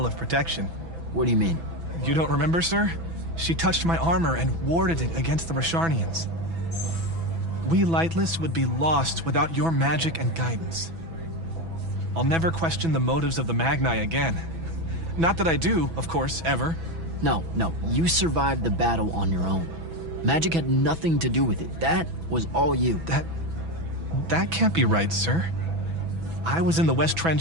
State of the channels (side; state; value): left; late; 6.1 ms